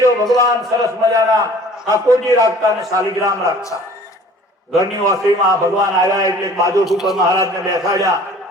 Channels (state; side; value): normal; both; correlation 0.49